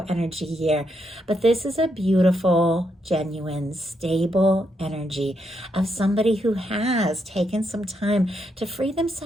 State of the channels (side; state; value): both; normal; correlation 0.79